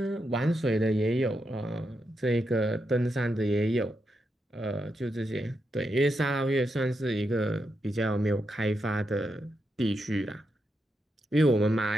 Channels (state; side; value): normal; both; correlation 0.84